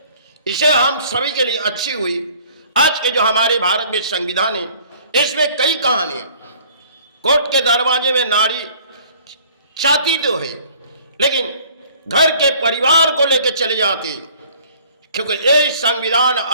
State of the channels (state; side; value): inverted; both; correlation -0.54